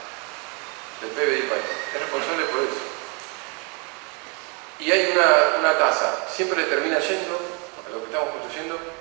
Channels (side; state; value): left; quieter; 33.7 dB